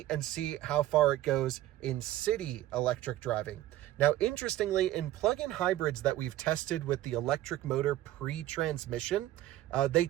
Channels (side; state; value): left; quieter; 14.3 dB